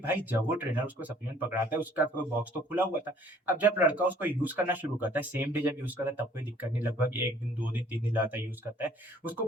जब वो ट्रेनर उसको सप्लीमेंट पकड़ाता है उसका तो बॉक्स तो खुला हुआ था। अब जब लड़का उसको यूज़ करना शुरू करता है, सेम डे जब यूज़ करता है तब कोई दिक्कत नहीं, लगभग 1 दिन, 2 दिन, 3 दिन लगातार यूज़ करता है, उसको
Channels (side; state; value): both; normal; correlation 0.57